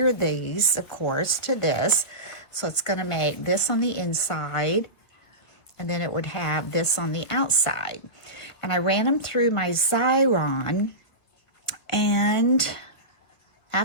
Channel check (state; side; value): late; right; 1.4 ms